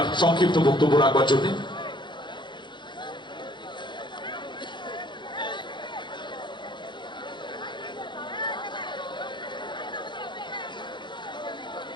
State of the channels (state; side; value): late; right; 0.23 ms